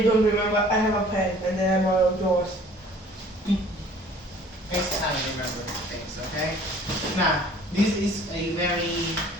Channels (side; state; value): both; normal; correlation 0.52